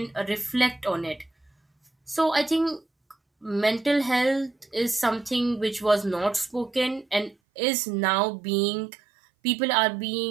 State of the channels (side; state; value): left; drops out; at 7.4 s